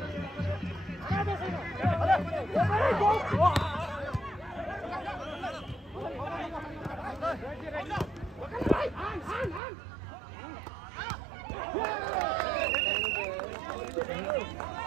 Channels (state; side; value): drops out; left; at 9.6 s